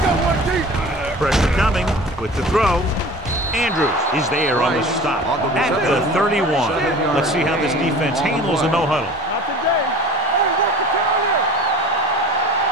go, one deep. Pressure coming with the throw. Andrews is there on the stop at the 31. Let's see how this defense handles a no-huddle. Not today. Hey, what's the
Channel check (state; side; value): normal; both; correlation 0.41